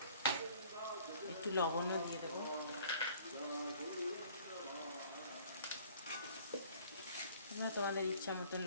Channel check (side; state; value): both; inverted; correlation -0.53